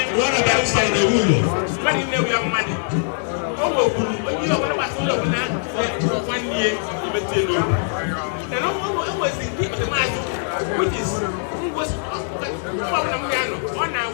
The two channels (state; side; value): silent; right; 64 dB below the other